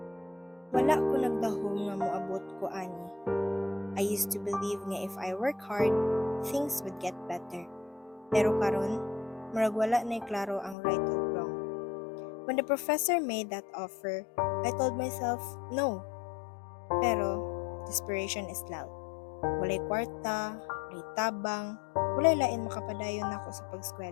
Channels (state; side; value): drops out; right; at 10.8 s